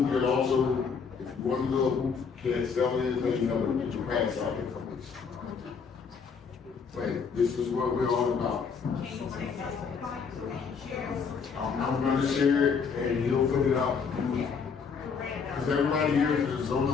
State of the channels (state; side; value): quieter; right; 5.8 dB